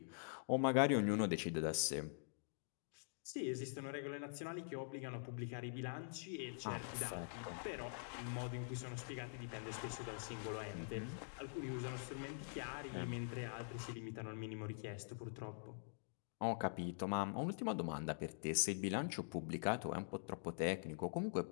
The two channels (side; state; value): right; silent; digital silence